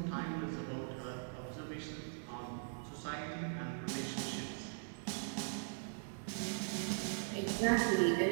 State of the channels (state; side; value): silent; left; digital silence